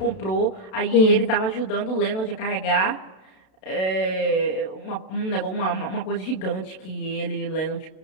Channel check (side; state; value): right; late; 32 ms